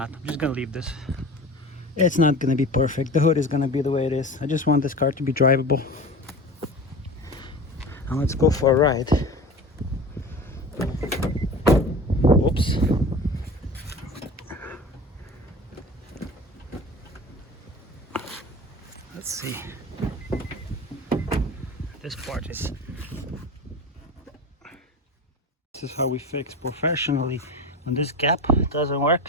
I'm just gonna leave this. It's not gonna be perfect. The hood is gonna be the way it is. I just want this car to be drivable. And let's go for a ride. Oops. Let's see. This part is... This is how we fix professionally. When this gap doesn't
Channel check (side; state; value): both; normal; correlation 0.34